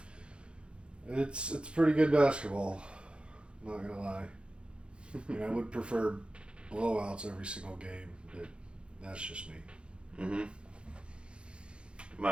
It's pretty good basketball. Not gonna lie. I mean, I would prefer blowouts every single game, but that's just me.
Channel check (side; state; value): left; late; 0.056 ms